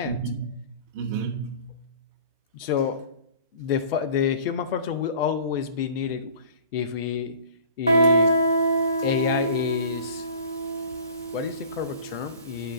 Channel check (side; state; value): both; inverted; correlation -0.45